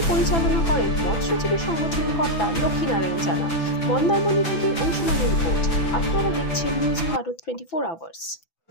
পরিচালনা করেন মৎস্যজীবী সংগঠনের কর্তা লক্ষ্মীনারায়ণ জানা। মন্দারমণি থেকে অংশুমানের রিপোর্ট। আপনারা দেখছেন নিউজ ভারত 24 আওয়ার্স।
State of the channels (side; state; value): right; late; 6.0 ms